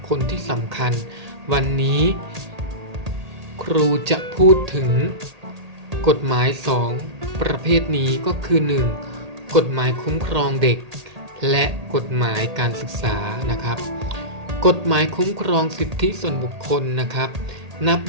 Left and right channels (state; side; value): late; left; 1.8 ms